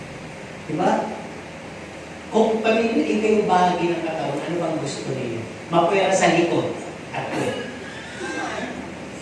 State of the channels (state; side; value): identical; both; correlation 1.00